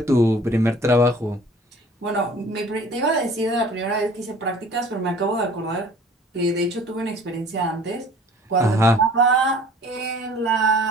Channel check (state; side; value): normal; both; correlation 0.50